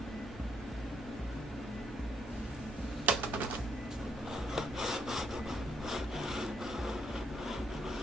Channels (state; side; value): normal; both; correlation 0.72